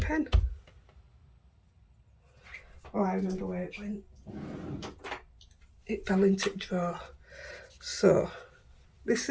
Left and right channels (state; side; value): identical; both; correlation 1.00